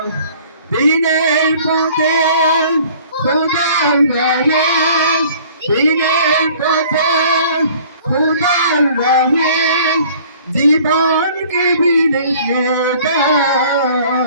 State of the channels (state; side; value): inverted; both; correlation -0.52